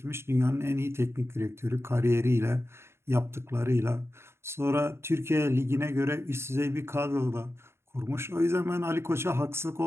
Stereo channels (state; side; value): late; left; 0.12 ms